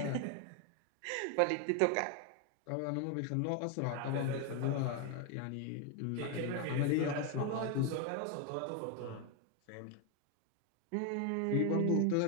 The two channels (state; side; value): different; both; correlation 0.01